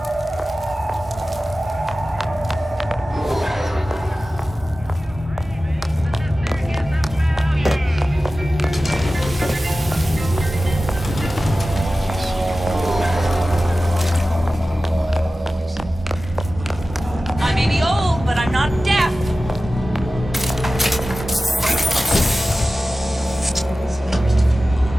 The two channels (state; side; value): normal; both; correlation 0.95